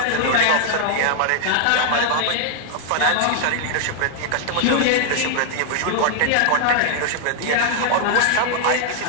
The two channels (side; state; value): both; different; correlation -0.01